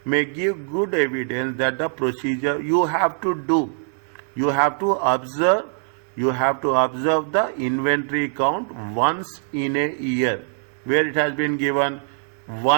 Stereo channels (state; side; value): silent; left; digital silence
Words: may give good evidence that the procedure you have to do. You have to observe the inventory count once in a year, where it has been given